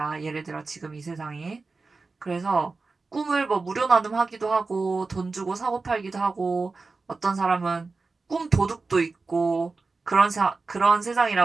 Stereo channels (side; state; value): left; quieter; 4.0 dB